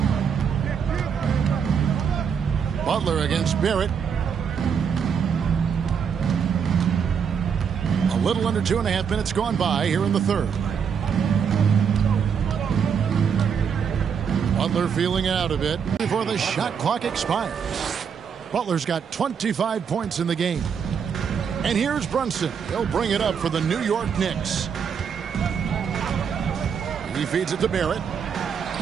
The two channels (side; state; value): left; quieter; 7.0 dB